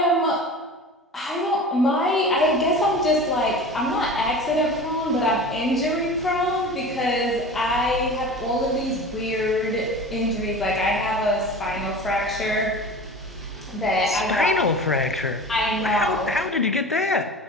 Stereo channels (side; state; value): both; normal; correlation 0.35